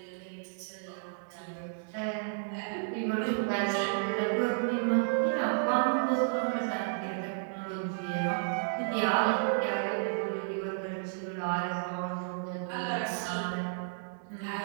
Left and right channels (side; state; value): left; silent; digital silence